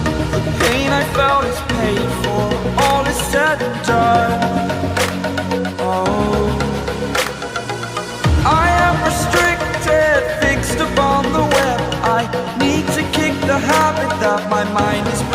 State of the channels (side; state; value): both; identical; correlation 1.00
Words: The pain I felt is paid for, all is said and done. Oh, I am restricted, fixed upon the web. I need to kick the habit that my mind is